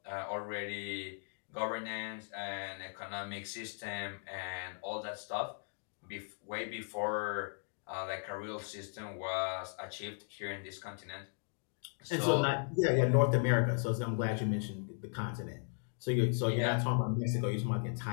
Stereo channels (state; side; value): silent; right; 53 dB below the other